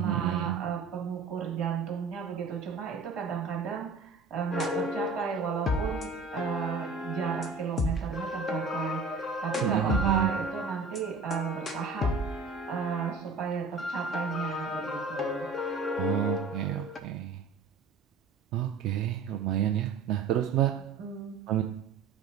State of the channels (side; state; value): left; quieter; 4.4 dB